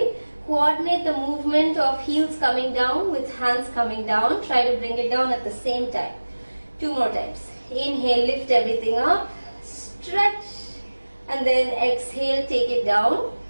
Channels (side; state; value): both; inverted; correlation -1.00